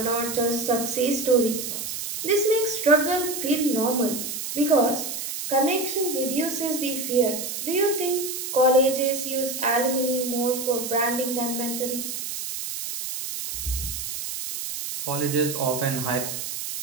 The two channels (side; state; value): right; noise; hiss, 5 dB below the sound